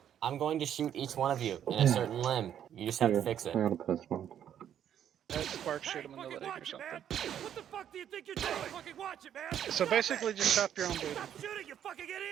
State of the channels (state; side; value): quieter; left; 9.9 dB